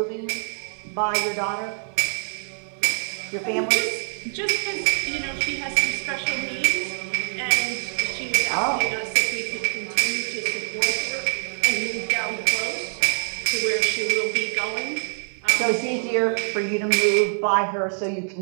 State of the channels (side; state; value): left; silent; digital silence